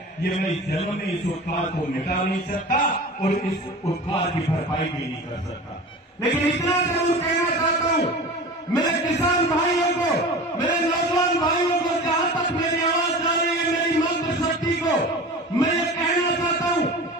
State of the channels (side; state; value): both; normal; correlation 0.35